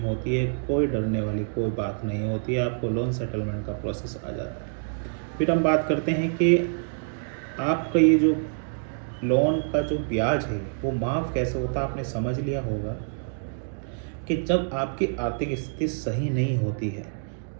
होती है, कोई डरने वाली कोई बात नहीं होती है, आपको लोन सेटलमेंट का प्रोसेस आ जाता है। फिर हम बात करते हैं कि आपका ये जो लोन का जो ब्याज है वो माफ़ कैसे होता है। आपने समझ लिया होगा कि जब आपकी आर्थिक स्थिति सही नहीं होती है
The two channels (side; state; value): left; silent; digital silence